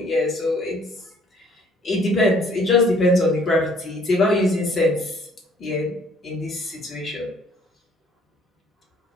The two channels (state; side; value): normal; both; correlation 0.60